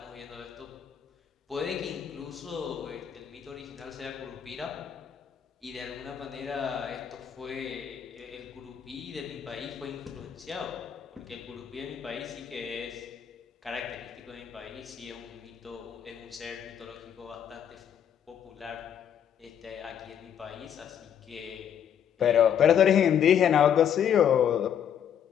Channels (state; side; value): quieter; right; 8.9 dB